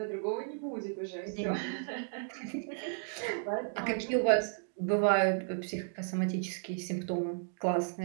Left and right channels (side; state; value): left; silent; digital silence